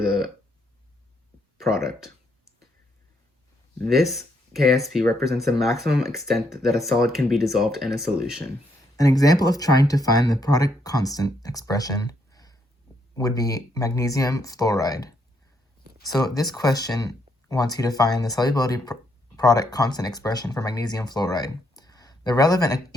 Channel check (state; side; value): normal; both; correlation 0.74